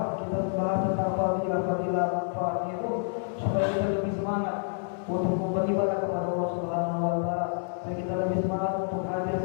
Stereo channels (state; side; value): silent; right; digital silence